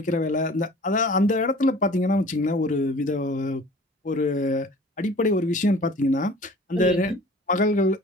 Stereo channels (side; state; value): both; normal; correlation 0.47